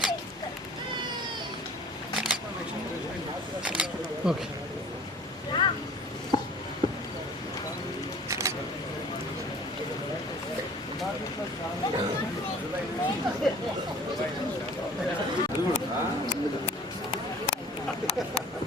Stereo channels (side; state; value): both; normal; correlation 0.47